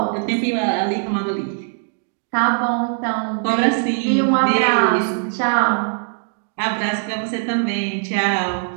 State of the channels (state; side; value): silent; left; digital silence